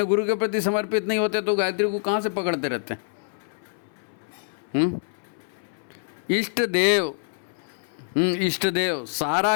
गुरु के प्रति समर्पित नहीं होते तो गायत्री को कहाँ से पकड़ते रहते हैं? इष्ट देव, इष्ट देव,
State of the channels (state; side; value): silent; right; 60 dB below the other